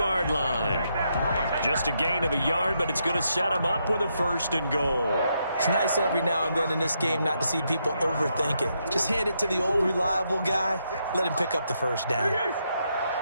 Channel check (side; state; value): both; inverted; correlation -0.79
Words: line. Just a gain of a yard, but it's going to set him up with a 1st and goal. It's nice every now and then in this game not to see people overthink it. Just hand it to the old reliable guy. Let him pick up the 1st down.